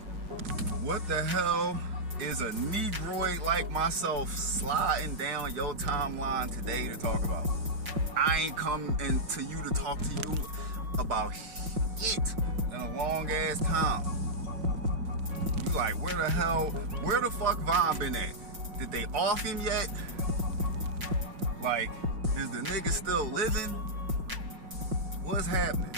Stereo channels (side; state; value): left; late; 5.5 ms